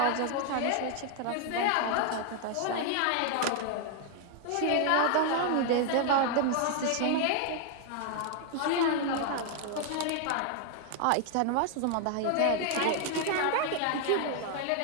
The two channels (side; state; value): both; different; correlation 0.00